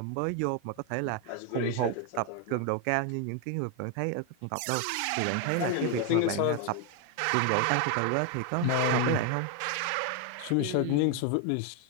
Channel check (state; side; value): different; both; correlation 0.01